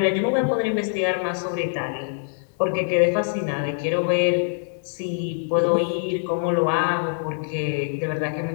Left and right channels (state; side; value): silent; right; digital silence